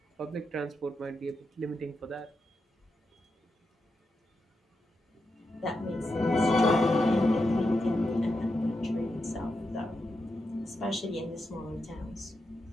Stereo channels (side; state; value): both; normal; correlation 0.86